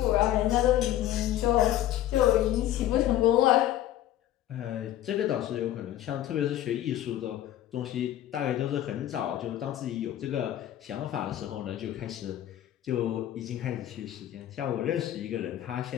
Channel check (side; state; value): right; quieter; 12.8 dB